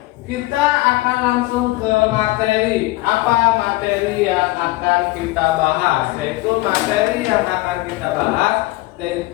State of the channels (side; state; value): right; quieter; 19.7 dB